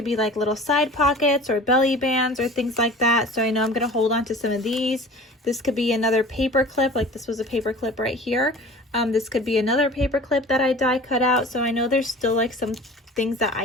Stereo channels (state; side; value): normal; both; correlation 0.42